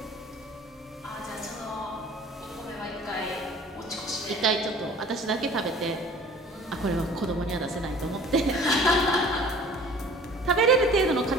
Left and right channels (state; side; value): normal; both; correlation 0.48